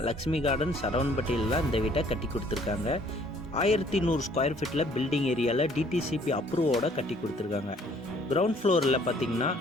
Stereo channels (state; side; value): normal; both; correlation 0.60